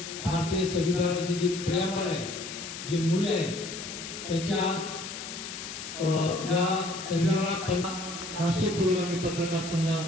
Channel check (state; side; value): noise; left; hiss, 9 dB below the sound